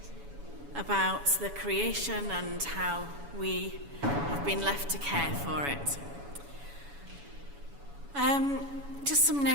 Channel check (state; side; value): late; left; 7.1 ms